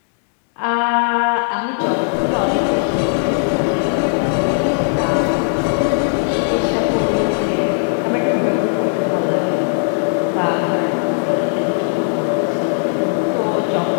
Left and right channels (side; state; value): right; silent; digital silence